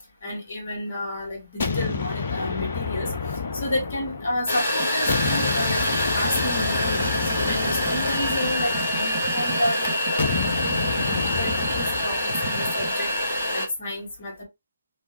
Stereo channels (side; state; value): both; inverted; correlation -0.73